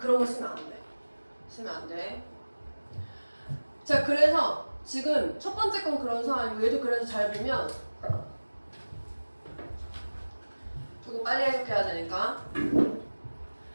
거 쓰면 안 돼. 쓰면 안 돼. 자 그래서 지금 첫 번째 건 그런 상황이고 얘도 그래서 잘 보면 조금 빨리 해석해야 되니까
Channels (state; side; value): inverted; both; correlation -1.00